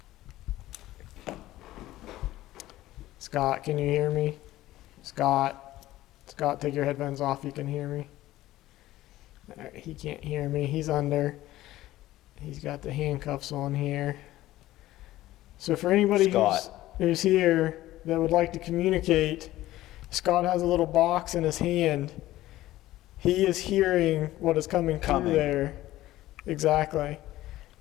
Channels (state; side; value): quieter; right; 15.7 dB